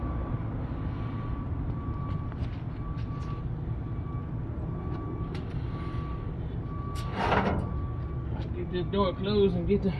Get this door closed and get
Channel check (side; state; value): both; identical; correlation 1.00